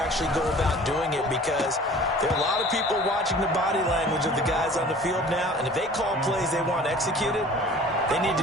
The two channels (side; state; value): both; normal; correlation 0.46